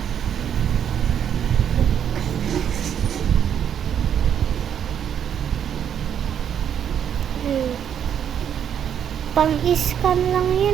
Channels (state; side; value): quieter; left; 8.8 dB